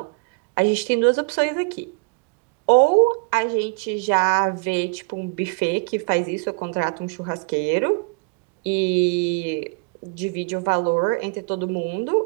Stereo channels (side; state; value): left; quieter; 33.3 dB